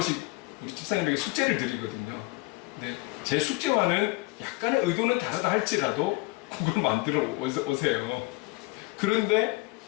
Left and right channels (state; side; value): quieter; right; 23.4 dB